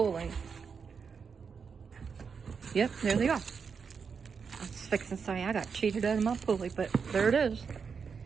Yep, there they are. I was fixing to say I got cheated out of my pulley, but there it is.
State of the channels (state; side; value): quieter; left; 5.9 dB